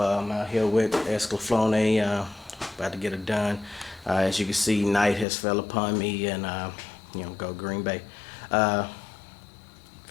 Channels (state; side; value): drops out; right; at 5.2 s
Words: out here with Escalaflone, about to get it done. As you can see, night has fell upon me and go Green Bay. Fell